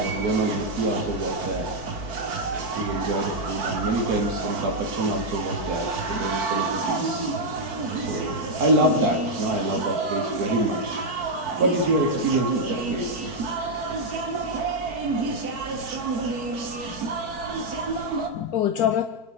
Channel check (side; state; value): left; late; 4.5 ms